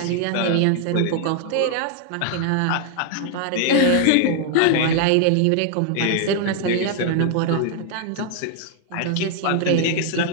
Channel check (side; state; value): both; different; correlation 0.00